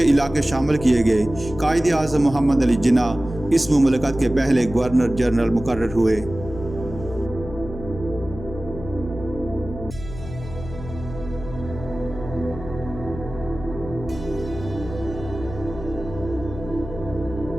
علاقے شامل کیے گئے۔ قائد اعظم محمد علی جناح اس مملکت کے پہلے گورنر جنرل مقرر ہوئے۔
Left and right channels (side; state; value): left; noise; hum, 11 dB below the sound